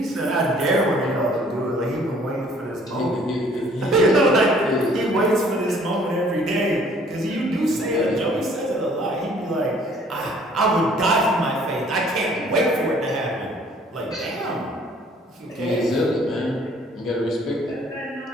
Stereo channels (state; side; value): normal; both; correlation 0.58